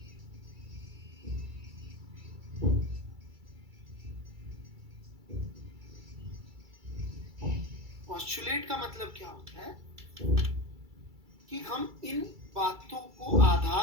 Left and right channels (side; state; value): left; late; 2.3 ms